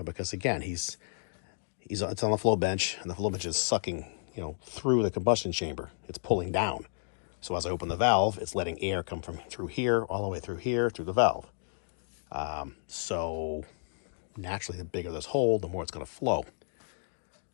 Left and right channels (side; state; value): right; silent; digital silence